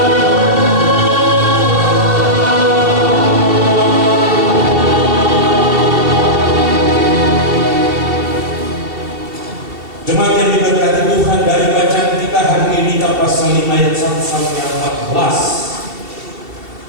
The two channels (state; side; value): late; left; 2.7 ms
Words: jemaat yang diberkati Tuhan, dari bacaan kita hari ini pasal 5 ayat 1 sampai